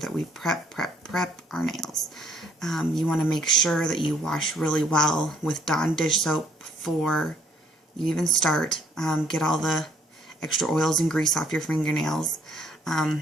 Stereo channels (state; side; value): normal; both; correlation 0.64